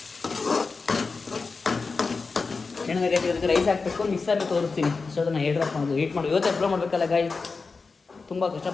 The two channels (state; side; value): quieter; right; 4.4 dB